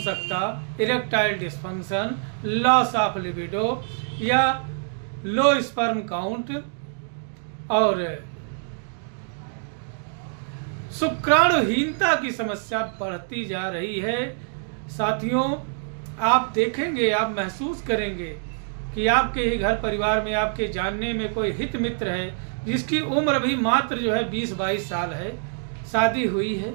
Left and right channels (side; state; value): left; silent; 61 dB below the other